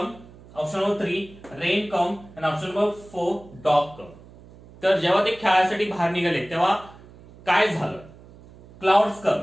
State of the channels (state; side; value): noise; right; hum, 22 dB below the sound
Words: Option number 3, rain come. And option number 4, dog come. तर जेव्हा ते खेळासाठी बाहेर निघाले तेव्हा काय झालं? क्लाउड्स कम,